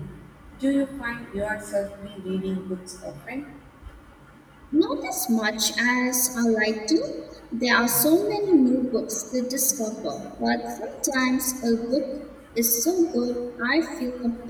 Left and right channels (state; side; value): identical; both; correlation 1.00